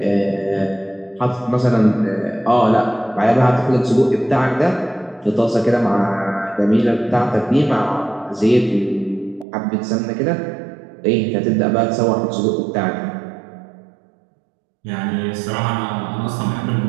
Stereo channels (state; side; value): drops out; left; at 9.5 s